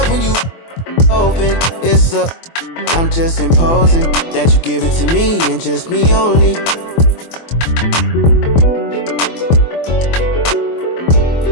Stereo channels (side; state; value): right; late; 24 ms